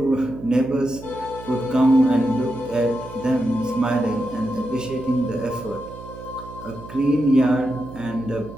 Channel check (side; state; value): right; noise; hum, 15 dB below the sound